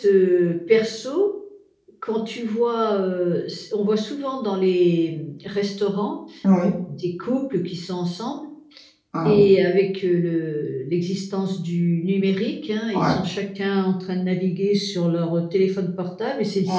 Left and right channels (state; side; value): identical; both; correlation 1.00